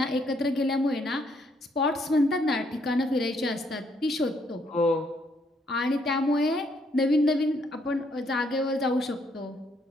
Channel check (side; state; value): both; normal; correlation 0.71